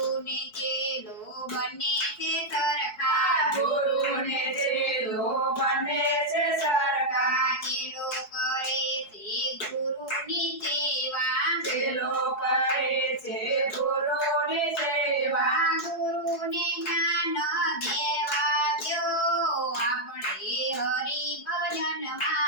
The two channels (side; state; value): right; late; 4.7 ms